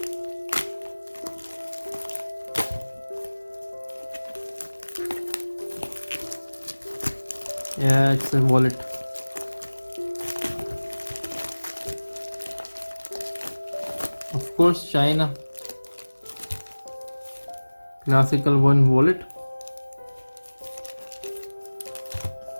Yeah, it's a wallet. Of course, China. Classical one wallet.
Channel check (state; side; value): inverted; both; correlation -1.00